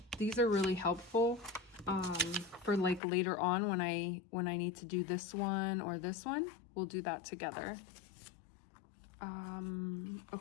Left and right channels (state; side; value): drops out; right; at 3.0 s